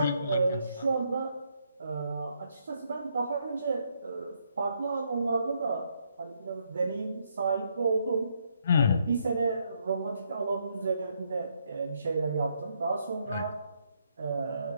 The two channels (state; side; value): inverted; both; correlation -0.74